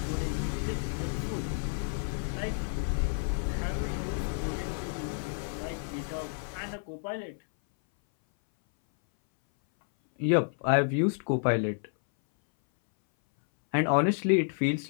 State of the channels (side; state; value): right; silent; 58 dB below the other